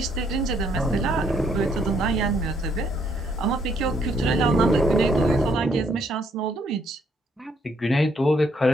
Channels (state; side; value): normal; both; correlation 0.70